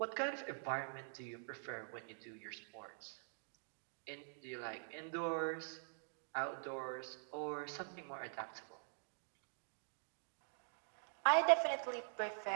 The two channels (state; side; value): silent; left; digital silence